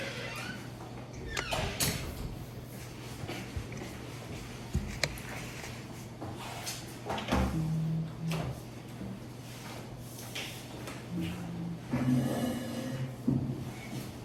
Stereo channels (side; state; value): both; identical; correlation 1.00